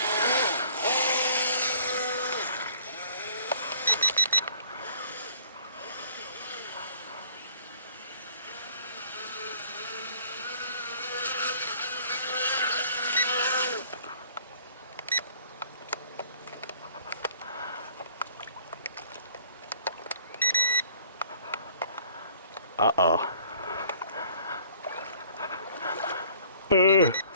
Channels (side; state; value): both; inverted; correlation -0.55